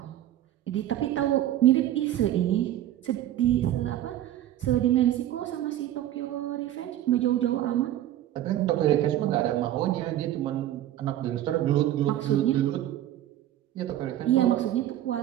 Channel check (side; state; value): left; quieter; 12.8 dB